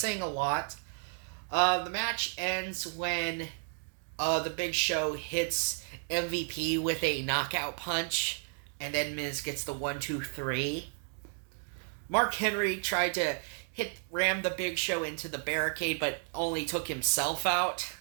a lot. The match ends when the Big Show hits MVP with a knockout punch. And then Miz gets the 1-2-3. Mark Henry tried to ram the Big Show into the barricade, but only took himself out.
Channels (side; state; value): left; silent; 56 dB below the other